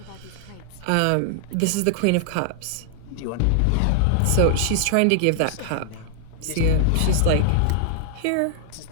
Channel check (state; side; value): different; both; correlation 0.00